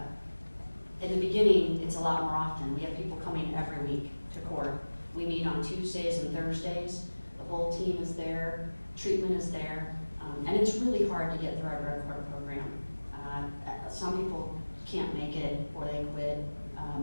In the beginning, it's a lot more often. We have people coming every week to court. We meet on Tuesdays and Thursdays. The whole team is there. Treatment is there. And it's really hard to get through our drug court program. Some people can't make it or they quit.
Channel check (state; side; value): inverted; both; correlation -1.00